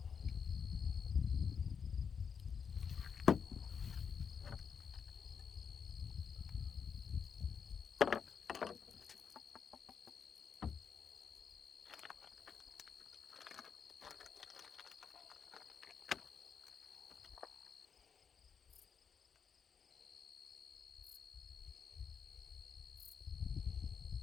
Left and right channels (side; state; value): right; quieter; 6.6 dB